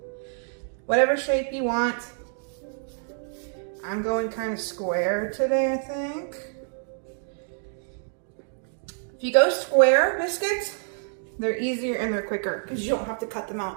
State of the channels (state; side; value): silent; left; digital silence